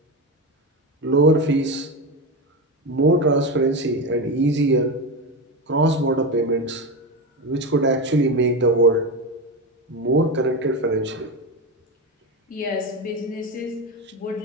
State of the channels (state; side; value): normal; both; correlation 0.17